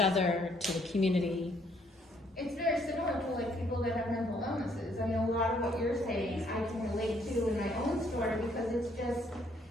to the community. It's very similar to like people that have mental illnesses. I mean, a lot of what you're saying I can relate to in my own story, because it's just,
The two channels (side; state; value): both; normal; correlation 0.67